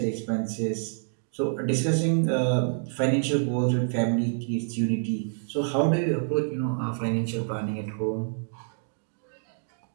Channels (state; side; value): silent; left; digital silence